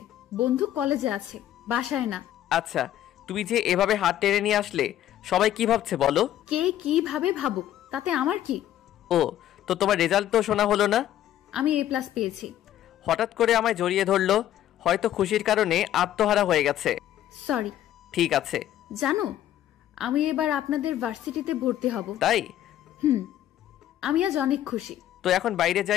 বন্ধু কলেজে আছে, বাসায় না। আচ্ছা, তুমি যে এভাবে হাত টেনে নিয়ে আসলে সবাই কি ভাবছে বলো? কে কিভাবে ভাবুক, তাতে আমার কি? ও, তো তোমার রেজাল্ট তো শোনা হলো না? আমি A+ পেয়েছি। হঠাৎ করে আমায় জড়িয়ে ধরলো। হয়তো খুশির কারণে আত্মহারা হয়ে গেছে। সরি। ঠিক আছে। জানো, আমি এবার আপনাদের ভার্সিটিতে ভর্তি হব। তাই? হুম। আমি আজ অনেক খুশি। তো এখন বাইরে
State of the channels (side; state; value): right; quieter; 12.0 dB